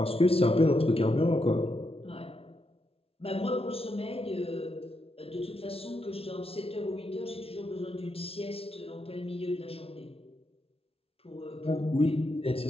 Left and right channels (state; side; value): late; right; 0.27 ms